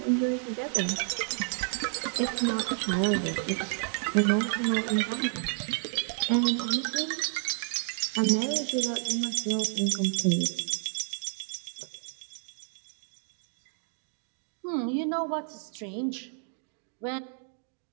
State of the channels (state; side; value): silent; left; 58 dB below the other